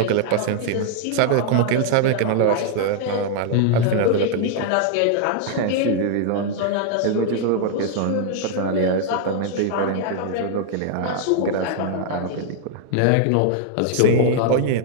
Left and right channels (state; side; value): different; both; correlation -0.01